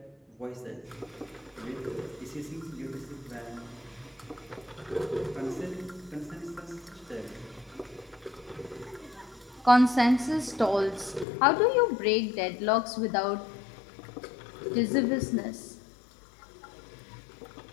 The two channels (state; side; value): drops out; right; at 11.2 s